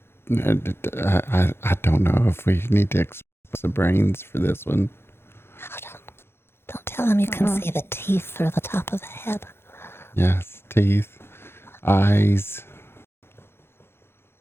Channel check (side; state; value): right; late; 0.11 ms